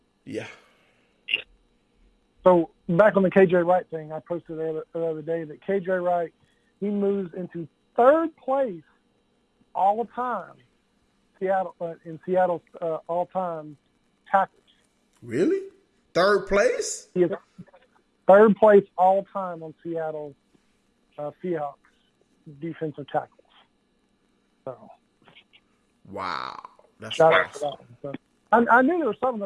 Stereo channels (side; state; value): both; identical; correlation 1.00